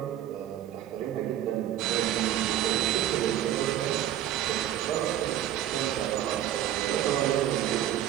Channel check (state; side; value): quieter; left; 11.8 dB